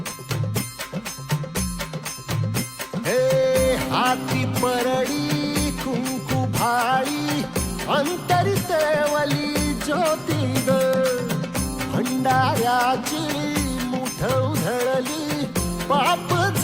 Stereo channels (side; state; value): both; identical; correlation 1.00